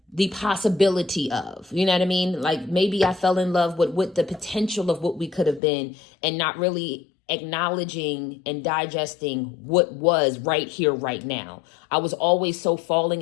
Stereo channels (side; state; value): right; drops out; at 5.6 s